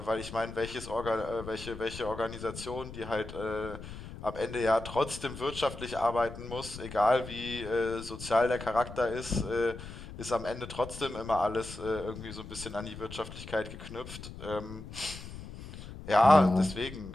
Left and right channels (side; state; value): left; noise; rumble, 12 dB below the sound